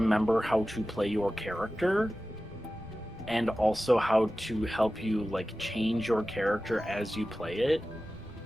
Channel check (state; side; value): noise; left; rumble, 22 dB below the sound